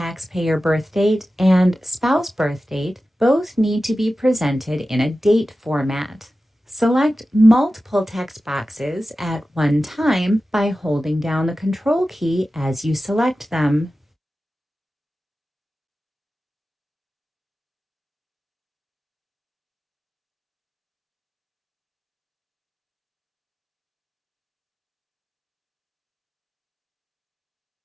birth date and spouse birth date both need to be presented in a date format. Select multiple text boxes at one time by holding down the Control key as you select them.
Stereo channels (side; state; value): both; normal; correlation 0.94